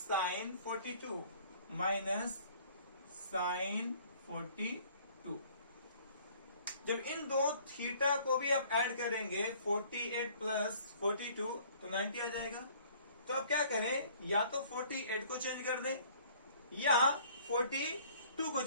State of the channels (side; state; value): both; inverted; correlation -0.55